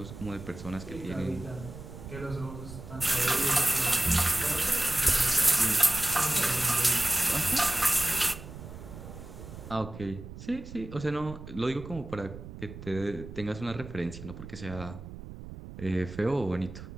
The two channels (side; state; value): right; noise; rumble, 13 dB below the sound